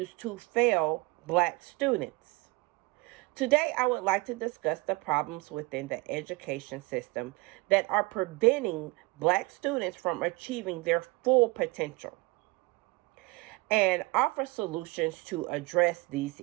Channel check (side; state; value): left; quieter; 23.4 dB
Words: to fail Black students. Today, I would like to discuss the problems within the education system that are preventing Black students from achieving their full potential and offer solutions to address these